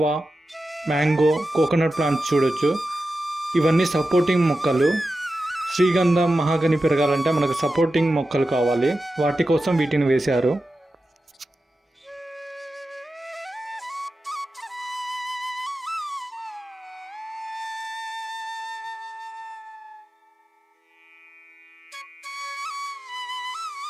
mango, coconut plants చూడొచ్చు. ఇవన్నీ సపోర్టింగ్ మొక్కలు. శ్రీగంధం, మహాగని పెరగాలంటే మనకు సపోర్టింగ్ మొక్కలు కావాలి, వాటి కోసం వీటిని వేశారు.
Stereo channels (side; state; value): both; normal; correlation 0.92